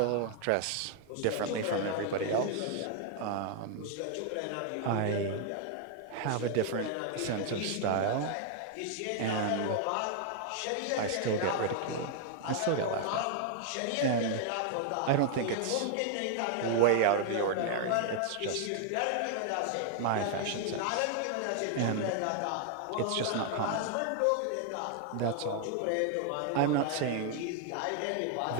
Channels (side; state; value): both; different; correlation 0.00